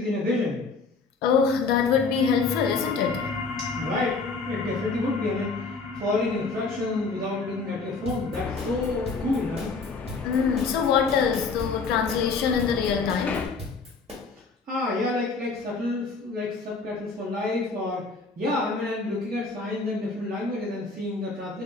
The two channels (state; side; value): quieter; right; 4.4 dB